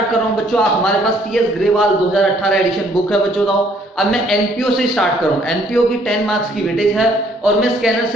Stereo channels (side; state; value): both; normal; correlation 0.64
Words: कर रहा हूं बच्चों। हमारे पास टीएस ग्रेवाल 2018 एडिशन बुक है बच्चों। अब मैं एनपीओ से स्टार्ट कर रहा हूं। एनपीओ की 10 मार्क्स की वेटेज है और मैं स्कैनर